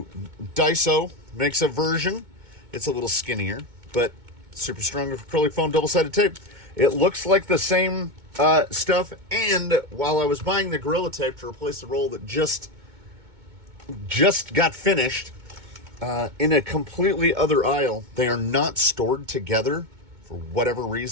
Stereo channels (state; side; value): late; left; 2.2 ms